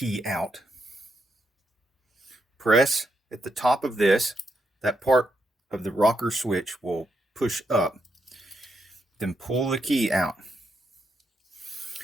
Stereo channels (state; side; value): normal; both; correlation 0.81